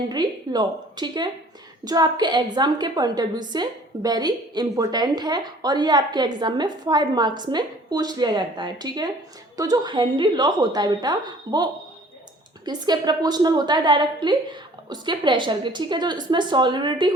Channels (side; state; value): both; normal; correlation 0.52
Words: लॉ। ठीक है, जो आपके एग्ज़ाम के पॉइंट ऑफ व्यू से वेरी इंपॉर्टेंट है और ये आपके एग्ज़ाम में 5 मार्क्स में पूछ लिया जाता है। ठीक है, तो जो हेनरी लॉ होता है बेटा वो किसके प्रोपोर्शनल होता है? डायरेक्टली उसके प्रेशर के। ठीक है, जो इसमें सॉल्युबिलिटी